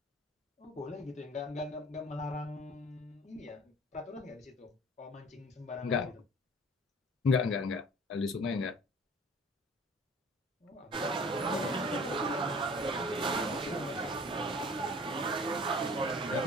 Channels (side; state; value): both; normal; correlation 0.48